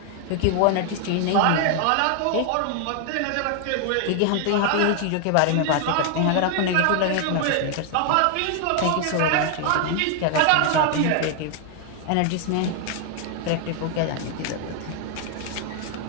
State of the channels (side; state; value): both; different; correlation 0.00